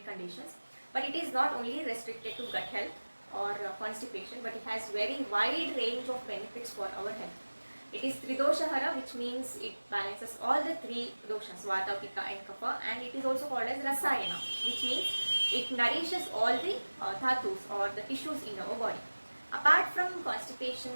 conditions. But it is not only restricted to gut health or constipation, but it has very wide range of benefits for our health. It is Tridoshahara, which means it balances all the three doshas, Vata, Pitta and Kapha, and it is also called as Rasayana, which means it nourishes all the dhatus or the tissues in our body. Apart from constipation,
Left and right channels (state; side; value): inverted; both; correlation -1.00